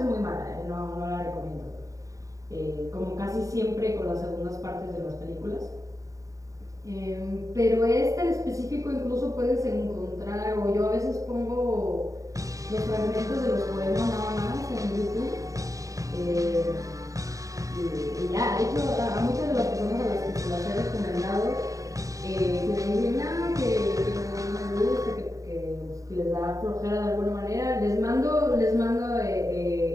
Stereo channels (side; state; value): left; late; 0.16 ms